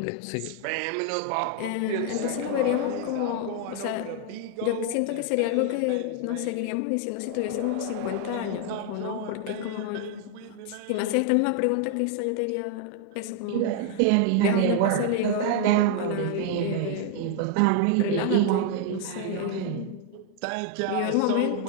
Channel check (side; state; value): both; different; correlation 0.00